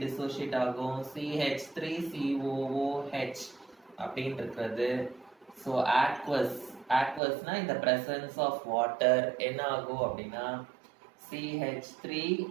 dissociate ஆகும், CH3COOH அப்படின்னு இருக்கிறது. So aqueous னா in the presence of water என்ன ஆகும் அப்படின்னா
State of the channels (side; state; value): left; drops out; at 7.2 s